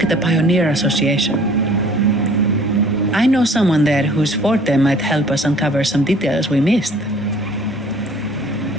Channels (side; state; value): both; normal; correlation 0.53